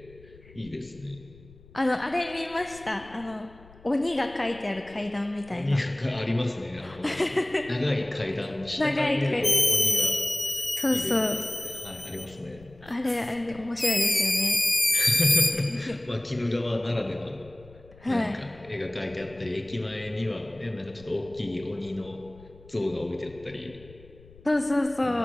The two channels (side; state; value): left; noise; rumble, 23 dB below the sound